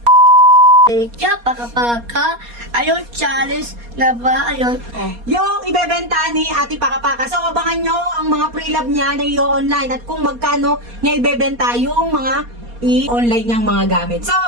Kaya paka ayun challenge na ba ayun Yung ibebenta ni Ate Pakapaka. So, abangan nyo ang mga pre-love niya na i-online at kung magkano niya ibebenta yung mga i-online niyang mga gamit. So,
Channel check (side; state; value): left; late; 4.2 ms